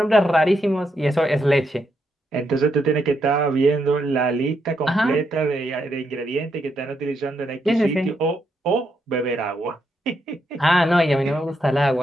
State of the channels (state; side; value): normal; both; correlation 0.80